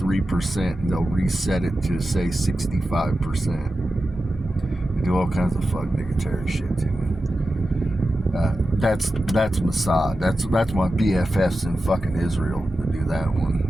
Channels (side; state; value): both; normal; correlation 0.92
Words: and they'll reset it to say 65%. They do all kinds of fuck niggatary shit to me. That's Mossad. That's my BFFs in fucking Israel to do that